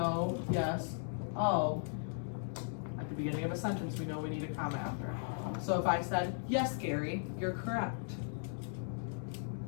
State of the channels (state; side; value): silent; right; digital silence